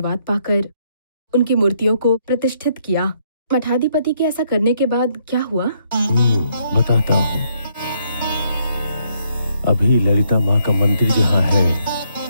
पाकर उनकी मूर्तियों को प्रतिष्ठित किया। मठाधिपति के ऐसा करने के बाद क्या हुआ? बताता हूँ। अभी ललिता माँ का मंदिर जहाँ है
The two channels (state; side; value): inverted; both; correlation -0.72